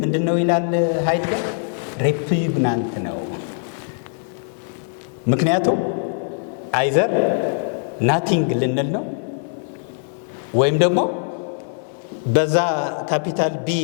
ምንድን ነው ይላል ሃይድገር? ሬፑግናንት ነው። ምክንያቱም አይዘር ናቲንግ ልንል ነው ወይም ደግሞ በዛ ካፒታል ቢ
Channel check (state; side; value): silent; right; 56 dB below the other